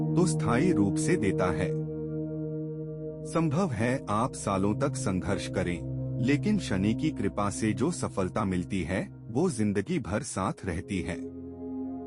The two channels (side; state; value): both; identical; correlation 1.00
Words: तो स्थायी रूप से देता है। संभव है आप सालों तक संघर्ष करें, लेकिन शनि की कृपा से जो सफलता मिलती है वो जिंदगी भर साथ रहती है।